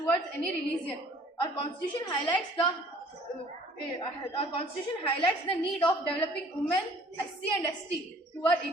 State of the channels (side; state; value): both; normal; correlation 0.55